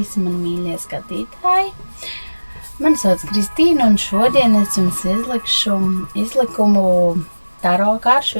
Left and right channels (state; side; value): inverted; both; correlation -1.00